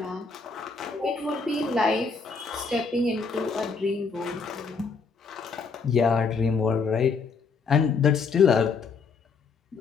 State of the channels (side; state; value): right; quieter; 5.0 dB